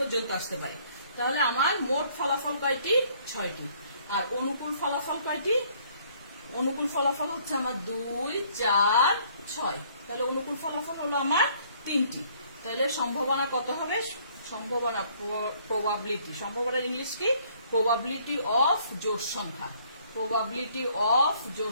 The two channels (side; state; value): both; inverted; correlation -0.62